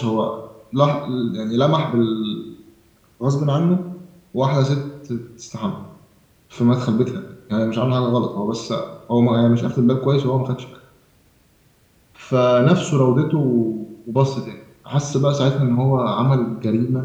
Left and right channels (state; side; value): identical; both; correlation 1.00